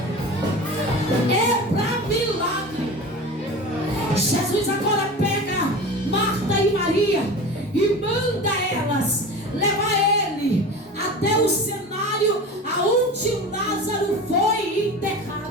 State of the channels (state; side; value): normal; both; correlation 0.33